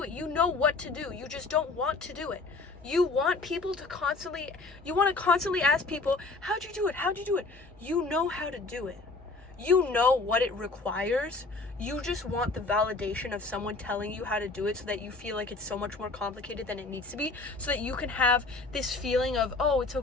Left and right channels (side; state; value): right; quieter; 3.6 dB